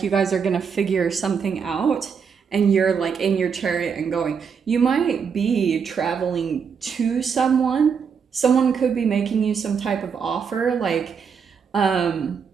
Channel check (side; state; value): left; quieter; 6.4 dB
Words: you guys are gonna figure something out, and you're like in your chariot and going. You might be traveling to someone. Someone could be making you some type of offer, that